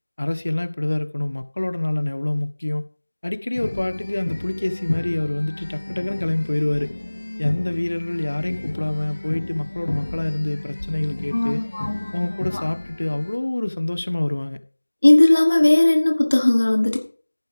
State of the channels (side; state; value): both; inverted; correlation -1.00